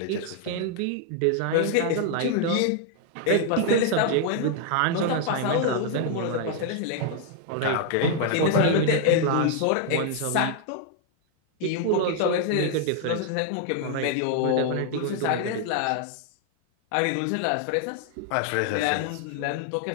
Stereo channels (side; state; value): both; different; correlation 0.00